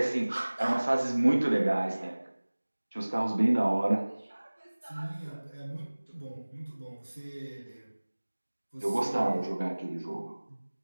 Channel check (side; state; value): both; inverted; correlation -1.00